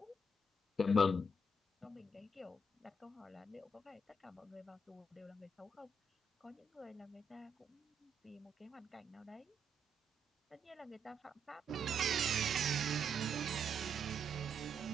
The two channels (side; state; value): both; normal; correlation 0.77